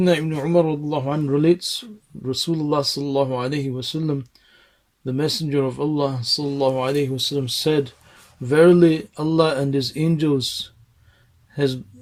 Ibn Umar radiallahu anhu relates, Rasulullah sallallahu alayhi wasallam, the Messenger of Allah sallallahu alayhi wasallam said, verily Allah and His angels, His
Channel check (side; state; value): both; identical; correlation 1.00